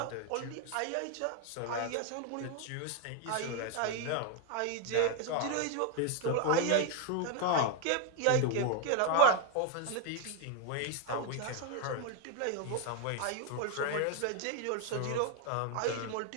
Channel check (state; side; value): different; both; correlation 0.01